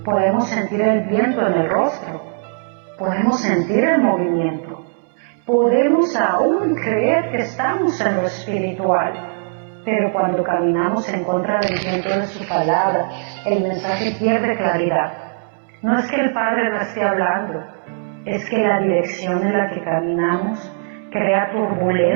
Podemos sentir el viento en el rostro, podemos sentir el movimiento, podemos aún creer que estamos en lo espiritual, pero cuando caminamos en contra del viento de su palabra, el mensaje pierde claridad. No es que el Padre no esté hablando, es que la dirección en la que caminamos crea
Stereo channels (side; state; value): left; silent; 64 dB below the other